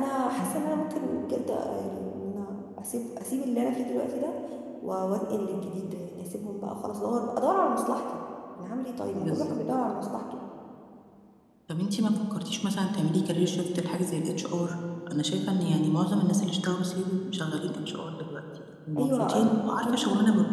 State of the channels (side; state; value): both; identical; correlation 1.00